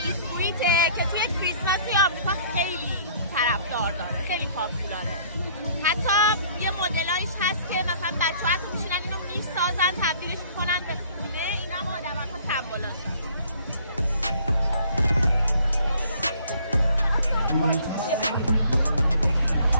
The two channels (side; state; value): both; inverted; correlation -0.57